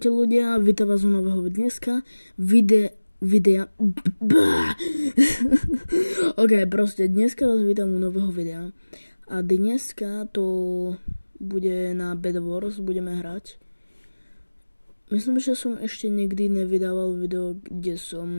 ľudia, vítam vás u nového dneska, videa. Ok, proste dneska vás vítam u nového videa. A dneska to bude na Bed Wars, budeme hrať. Myslím, že som ešte nikdy nevydával video, kde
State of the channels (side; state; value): both; inverted; correlation -1.00